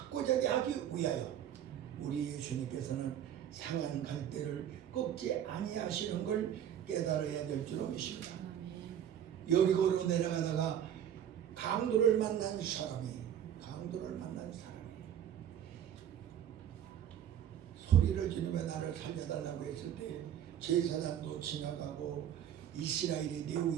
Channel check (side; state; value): left; quieter; 9.9 dB